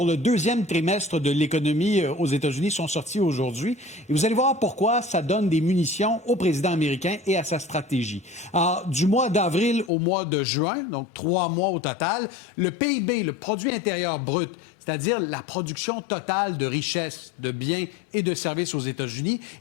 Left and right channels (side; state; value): right; drops out; at 9.9 s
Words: le deuxième trimestre de l'économie aux États-Unis sont sortis aujourd'hui. Et vous allez voir pourquoi ça donne des munitions au président américain et à sa stratégie. Alors, du mois d'avril au mois de juin, donc 3 mois au total, le PIB, le produit intérieur brut, c'est-à-dire la production totale de richesses, de biens et de services aux États-Unis,